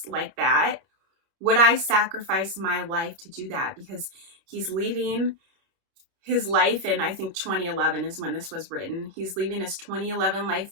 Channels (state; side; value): late; left; 30 ms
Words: like that, would I sacrifice my life to do that? Because he's leaving his life in, I think 2011 is when this was written. He's leaving his 2011 life